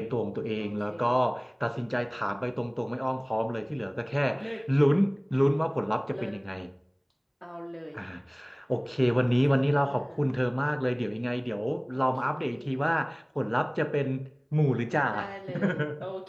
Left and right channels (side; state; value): both; identical; correlation 1.00